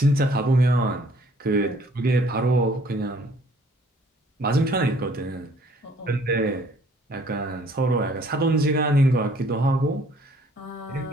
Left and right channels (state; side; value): normal; both; correlation 0.59